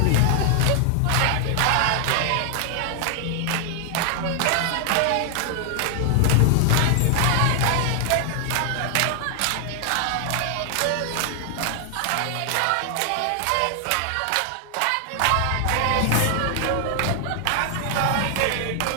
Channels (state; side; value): different; both; correlation 0.00